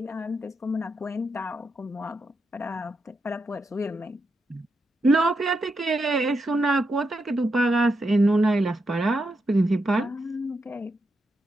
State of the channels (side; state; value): both; normal; correlation 0.84